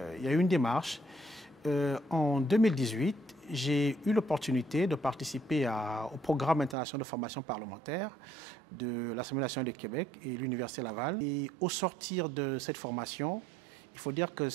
y a eu une démarche. En 2018, j'ai eu l'opportunité de participer au programme international de formation parlementaire de l'Assemblée nationale du Québec et l'Université Laval. Et au sortir de cette formation, il faut dire que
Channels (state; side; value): drops out; left; at 6.8 s